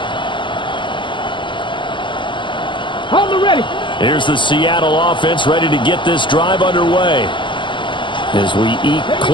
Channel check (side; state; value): right; late; 0.23 ms